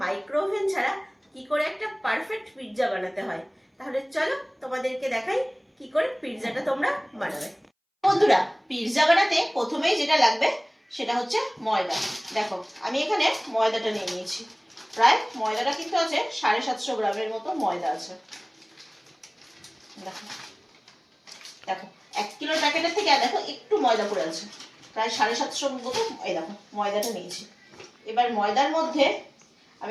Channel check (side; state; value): both; identical; correlation 1.00